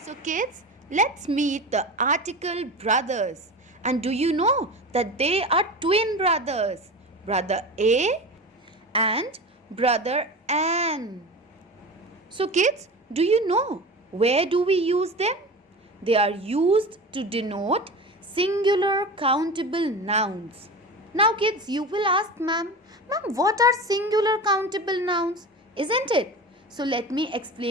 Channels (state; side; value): normal; both; correlation 0.30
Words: kids, let's meet the article brothers. And do you know that they are twin brothers? Brother A and brother Ann. So kids, do you know where do we use them? They are used to denote singular countable nouns. Now kids, you will ask ma'am, what are singular countable nouns? Isn't it? So let me